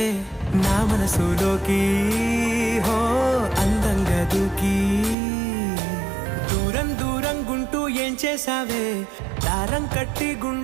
నా మనసులోకి. హో అందంగా దూకి దూరం దూరం గుంటూ ఏం చేసావే, దారం కట్టి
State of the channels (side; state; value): left; drops out; at 5.2 s